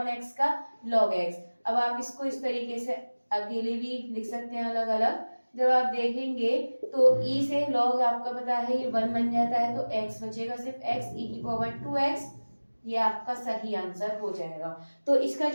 का log x। अब आप इसको इस तरीके से अकेले भी लिख सकते हैं अलग अलग। जब आप देखेंगे तो e से log आपका पता है ये 1 बन जाता है, तो x बचेगा सिर्फ x e⁻2x, ये आपका सही आंसर हो जाएगा। तो इसका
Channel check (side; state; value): both; inverted; correlation -1.00